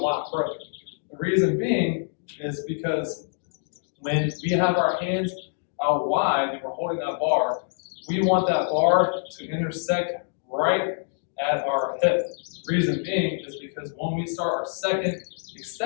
further. The reason being is because when we have our hands out wide and we're holding that bar, we want that bar to intersect right at our hip. Reason being is because when we start our second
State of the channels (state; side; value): silent; right; digital silence